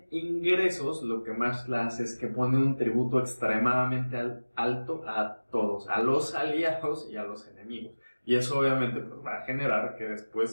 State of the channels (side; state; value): both; inverted; correlation -1.00